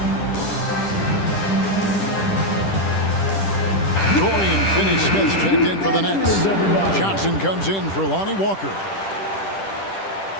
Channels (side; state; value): right; late; 10 ms